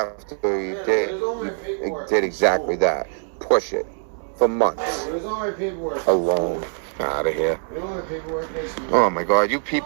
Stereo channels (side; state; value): left; silent; 63 dB below the other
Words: he did exactly that. Push it. for months. Alone. Out of here. Oh my God, you